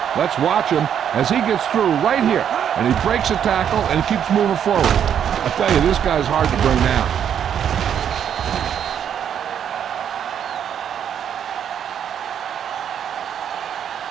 Let's watch him as he gets through right here, and he breaks a tackle and keeps moving forward. I tell you, this guy's hard to bring down.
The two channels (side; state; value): left; quieter; 8.9 dB